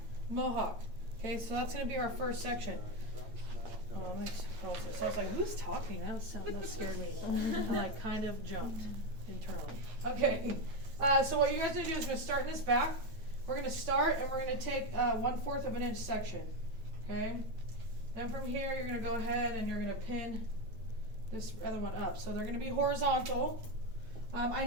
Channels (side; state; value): left; late; 9.1 ms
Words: mohawk. Okay, so that's going to be our first section. So I was like, who's talking? That scared me. I like kind of jumped internally. Okay, so what you guys are going to do is we're going to start in this back. We're going to start and we're going to take 1/4 of an inch section. Okay, then from here you're going to go ahead and you're going to pin this other one up. So they're going to be horizontal. I